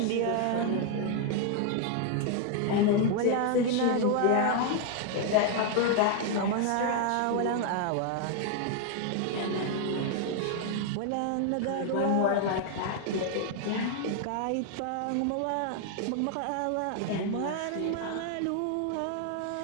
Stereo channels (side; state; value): both; different; correlation 0.00